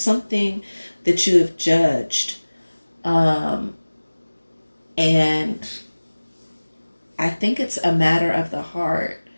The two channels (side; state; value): both; inverted; correlation -1.00